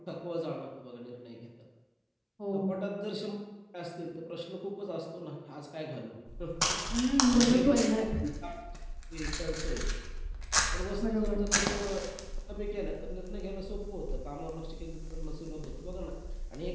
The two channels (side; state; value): both; identical; correlation 1.00